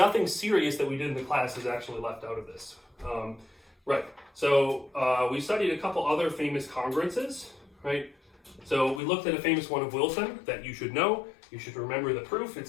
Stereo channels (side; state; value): right; drops out; at 9.0 s